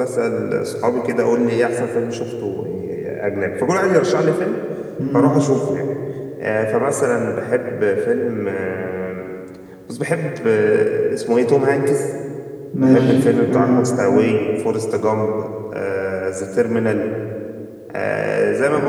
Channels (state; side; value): identical; both; correlation 1.00